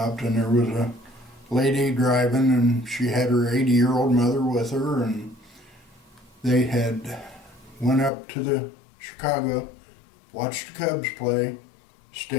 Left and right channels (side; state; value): right; drops out; at 8.1 s